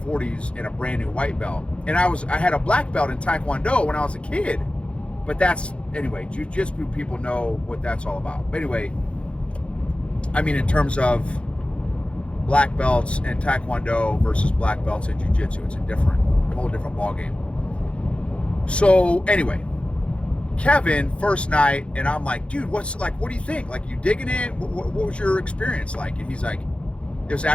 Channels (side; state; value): right; late; 0.059 ms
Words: in a brand new white belt. And I had a black belt in Taekwondo when I was a kid. But anyway, jiu-jitsu people know what that's all about. But anyway, in terms of black belts and Taekwondo versus black belts in jiu-jitsu, it's a whole different ball game. So anyway, Kevin, first night, and I'm like, dude, what do you think? Like, you digging it? What was your experience like? And he's like, it was